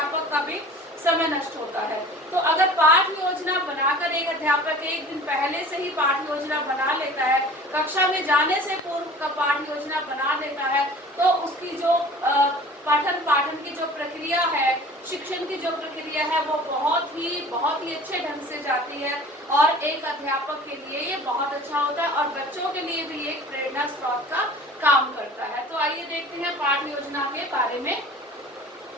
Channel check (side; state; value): both; normal; correlation 0.44